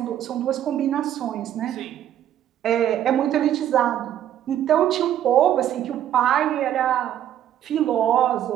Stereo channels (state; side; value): quieter; left; 11.2 dB